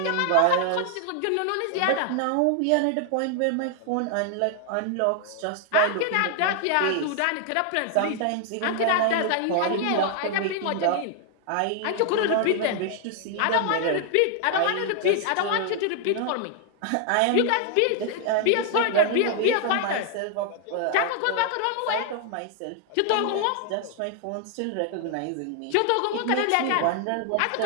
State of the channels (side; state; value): both; different; correlation 0.00